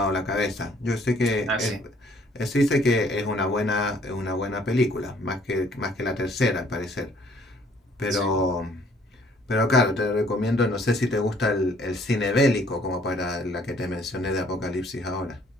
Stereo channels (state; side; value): normal; both; correlation 0.61